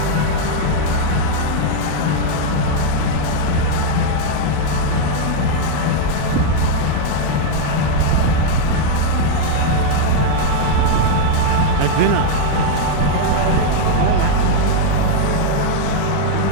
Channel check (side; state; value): both; different; correlation 0.00